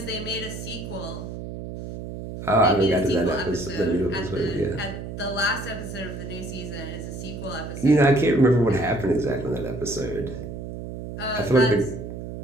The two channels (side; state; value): right; noise; hum, 9 dB below the sound